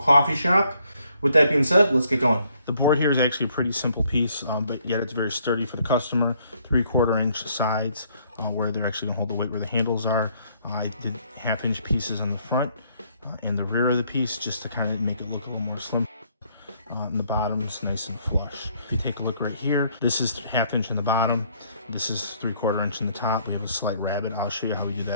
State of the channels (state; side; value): inverted; both; correlation -0.67